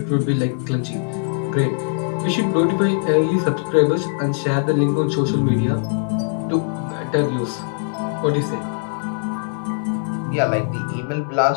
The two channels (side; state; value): right; silent; digital silence